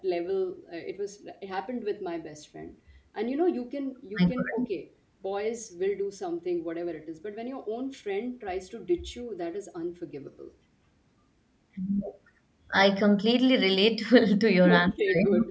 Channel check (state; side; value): identical; both; correlation 1.00